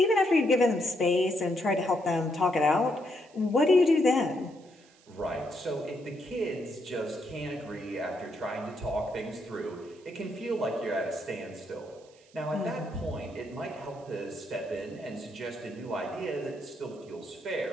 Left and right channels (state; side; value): noise; right; hiss, 29 dB below the sound